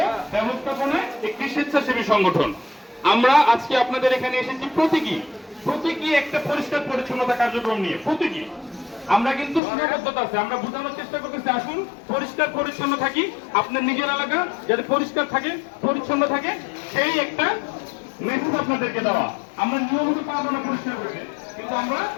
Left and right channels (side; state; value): right; drops out; at 9.6 s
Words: ব্যবস্থাপনায় একটি স্বেচ্ছাসেবী সংগঠন। আমরা আজকে আপনাদের এখানে এসেছি প্রতীকী একটা পরিষ্কার পরিচ্ছন্নতা কার্যক্রম নিয়ে। প্রতীকী আমরা কিন্তু সীমাবদ্ধতা আছে, আমরা বোঝানোর চেষ্টা করতেছি আসুন পরিষ্কার পরিচ্ছন্ন থাকি, আপনার নিজের এলাকা যাতে পরিষ্কার থাকে, পরিচ্ছন্ন থাকে, সেই একটা মেসেজ আপনাদেরকে দেওয়া। আমরা নিয়মিত পাবো না পরিষ্কার করতে, কিন্তু আমরা